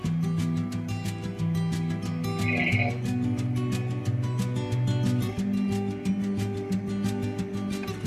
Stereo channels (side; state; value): both; identical; correlation 1.00